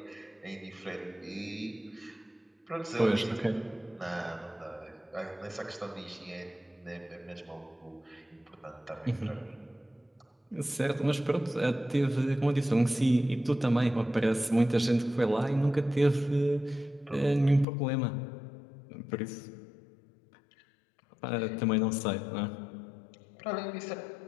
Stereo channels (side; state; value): right; drops out; at 17.7 s